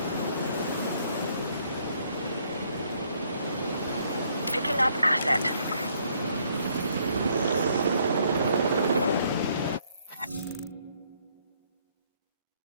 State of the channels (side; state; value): both; inverted; correlation -0.67